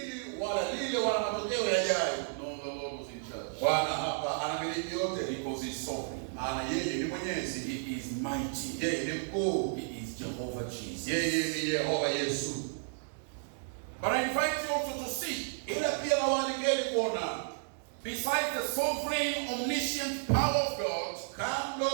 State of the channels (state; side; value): silent; left; digital silence